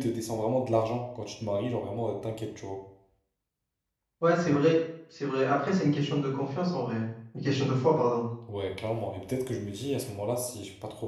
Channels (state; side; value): identical; both; correlation 1.00